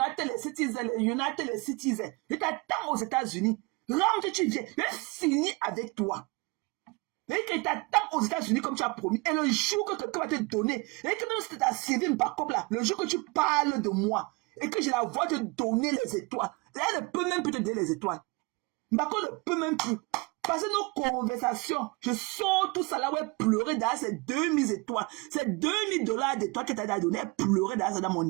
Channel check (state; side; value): quieter; left; 27.1 dB